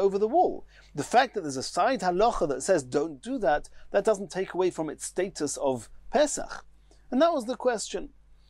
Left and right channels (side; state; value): both; identical; correlation 1.00